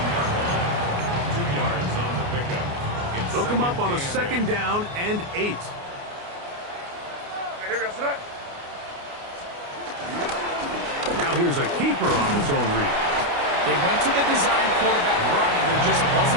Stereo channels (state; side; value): late; left; 29 ms